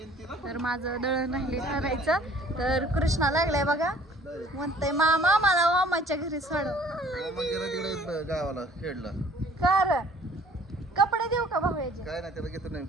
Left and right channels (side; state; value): both; normal; correlation 0.54